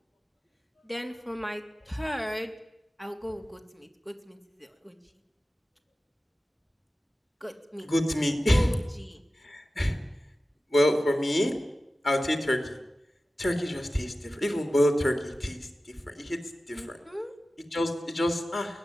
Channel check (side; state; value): both; normal; correlation 0.95